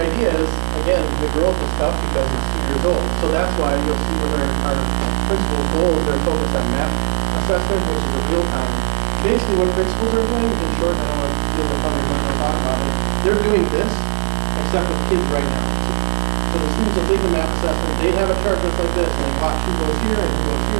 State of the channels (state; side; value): silent; left; 62 dB below the other